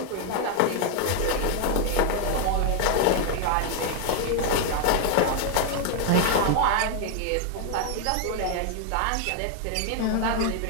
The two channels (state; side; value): different; both; correlation 0.00